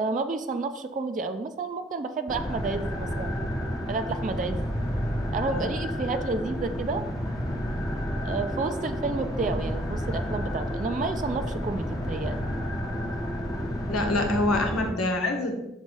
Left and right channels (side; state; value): both; normal; correlation 0.59